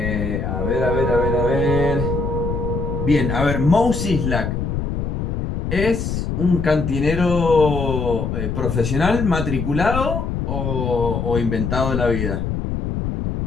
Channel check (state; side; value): noise; left; rumble, 2 dB below the sound